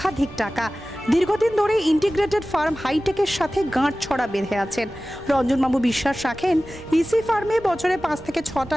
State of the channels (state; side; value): noise; right; rumble, 21 dB below the sound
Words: টাকা। দীর্ঘদিন ধরে ইন্টিগ্রেটেড ফার্ম হাইটেকের সাথে গাঁটছড়া বেঁধে আছেন। রঞ্জনবাবু বিশ্বাস রাখেন ইসি ফার্মে বছরে 5 থেকে 6টা